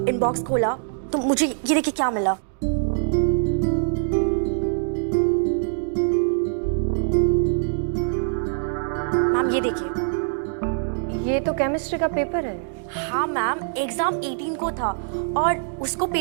इनबॉक्स खोला तो मुझे ये देखिए क्या मिला। मैम, ये देखिए। ये तो केमिस्ट्री का पेपर है। हाँ मैम, एग्जाम 18 को था और उसको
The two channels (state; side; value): silent; left; digital silence